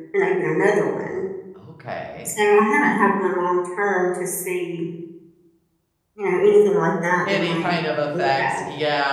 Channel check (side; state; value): both; identical; correlation 1.00